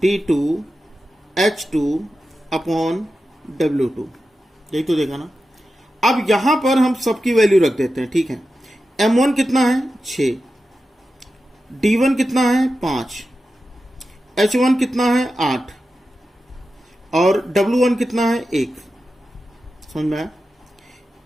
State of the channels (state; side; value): normal; both; correlation 0.91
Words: D2 H2 upon W2, यही तो देखा ना। अब यहां पर हम सबकी वैल्यू रख देते हैं, ठीक है। M1 कितना है 6, D1 कितना है 5, H1 कितना है 8 और W1 कितना है 1, समझ में आया।